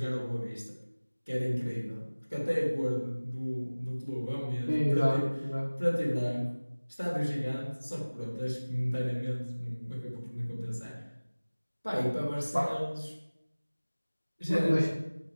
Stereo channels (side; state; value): both; inverted; correlation -1.00